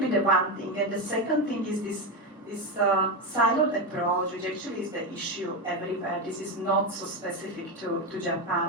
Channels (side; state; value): both; normal; correlation 0.13